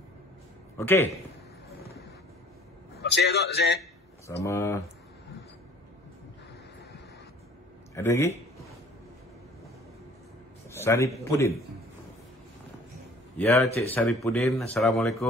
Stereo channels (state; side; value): normal; both; correlation 0.51